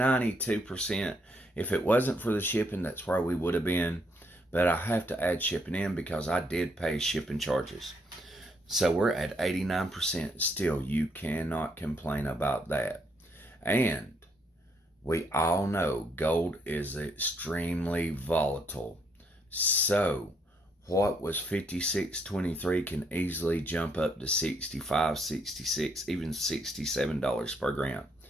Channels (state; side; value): normal; both; correlation 0.72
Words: If it wasn't for the shipping, that's where we would have been. But I have to add shipping in because I did pay shipping charges. So we're at 89%. Still, you cannot complain about that. And we all know gold is extremely volatile. So what was 56.23 can easily jump up to 65, 66, even $67 per gram.